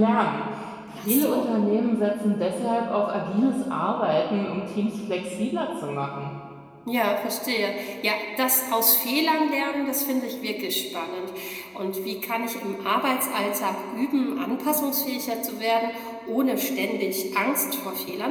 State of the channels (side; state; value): both; identical; correlation 1.00